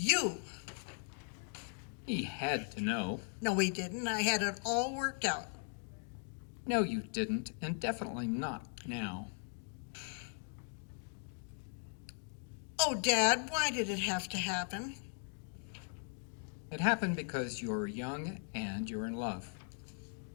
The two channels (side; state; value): right; silent; 52 dB below the other